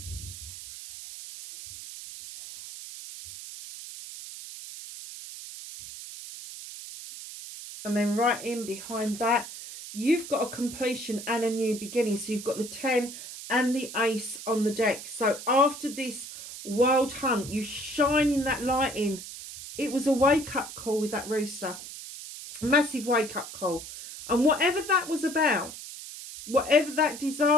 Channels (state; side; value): noise; right; hiss, 12 dB below the sound